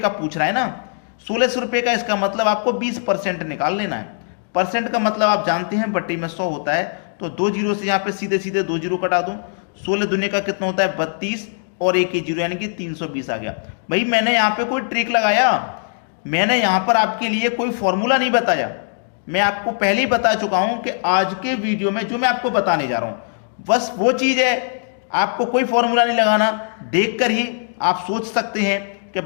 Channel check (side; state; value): right; silent; digital silence